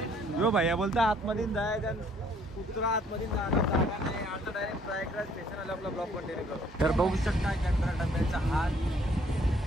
जो भैया बोलता आतमध्ये जायचं, कुत्रा आतमध्ये जागा नाही. आता डायरेक्ट प्रयागराज स्टेशन आलं, आपला ब्लॉक कंटिन्यू करू. तर बघू शकता चंद्रा डब्याचा हात.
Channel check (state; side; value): normal; both; correlation 0.62